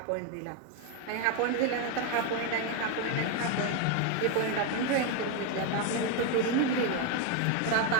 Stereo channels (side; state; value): both; different; correlation 0.01